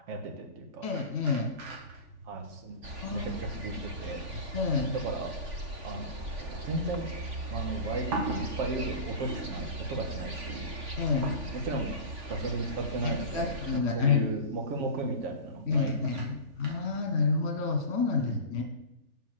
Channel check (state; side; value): late; left; 3.5 ms